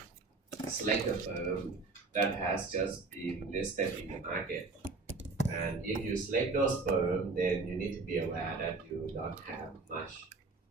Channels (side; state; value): left; quieter; 3.8 dB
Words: select a firm that has just been listed in the market. And if you select those firms, then you need to be aware that you don't have much